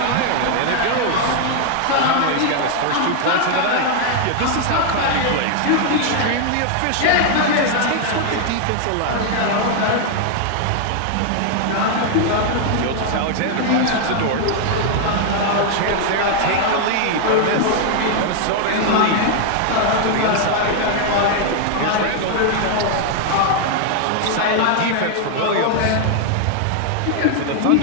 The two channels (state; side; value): different; both; correlation 0.00